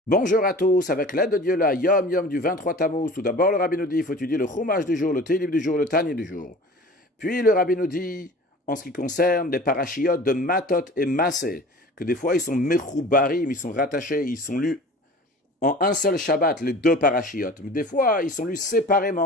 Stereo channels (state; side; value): normal; both; correlation 0.41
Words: Bonjour à tous, avec l'aide de Dieu, la Yom Yom du 23 Tammuz. Tout d'abord, le Rabbi nous dit, il faut étudier le Chumash du jour, le Télib du jour, le Tani du jour. Puis le Rabbi nous dit, en ce qui concerne les parachiotes de Matot et Massé, que des fois ils sont mechoubarim, ils sont rattachés, ils sont lus en un seul Shabbat, les deux parachiotes. Mais des fois, ils sont lus